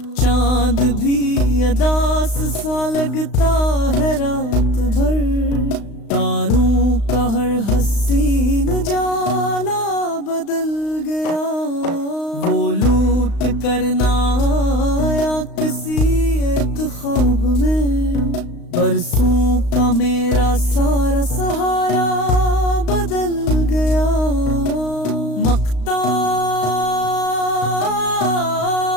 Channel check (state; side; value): late; right; 35 ms